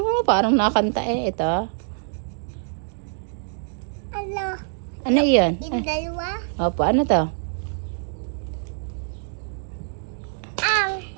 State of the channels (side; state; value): left; silent; 62 dB below the other